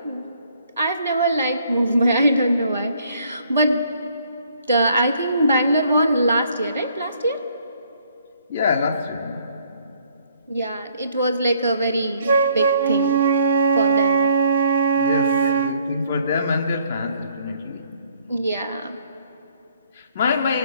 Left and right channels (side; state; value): both; inverted; correlation -0.65